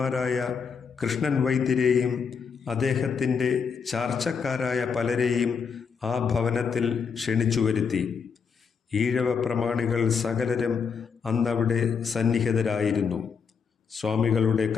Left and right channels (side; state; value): right; quieter; 6.1 dB